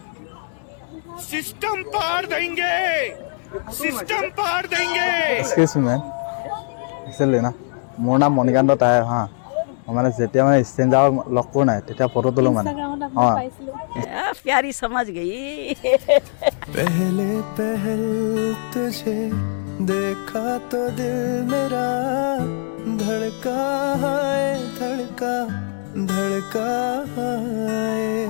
सिस्टम पार देंगे, सिस्टम पार देंगे। Excuse me, इसलिए ना मोर नाम मणिकांत ताय हाँ মানে যেতিয়া মানে স্ট্ৰেঞ্জাৰ লগ কৰোঁ নাই তেতিয়া ফটো তোলো মানে प्यारी समझ गई। पहले पहल तुझे देखा तो दिल मेरा धड़का है धड़का धड़का है।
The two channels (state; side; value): silent; right; digital silence